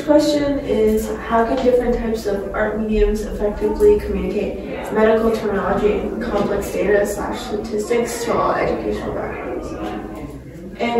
question is, how can different types of art mediums effectively communicate medical terminology and complex data / statistics to all educational backgrounds?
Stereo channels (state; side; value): identical; both; correlation 1.00